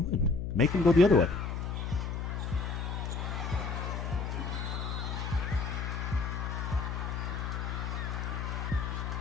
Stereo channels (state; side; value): noise; left; hum, 3 dB below the sound